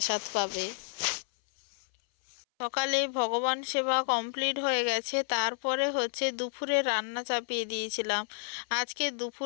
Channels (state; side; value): silent; right; 57 dB below the other